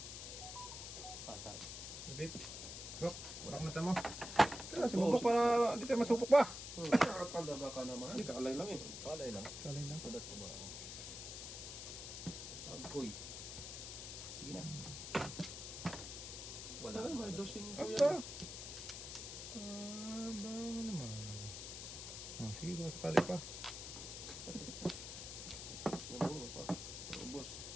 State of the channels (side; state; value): left; noise; hiss, 8 dB below the sound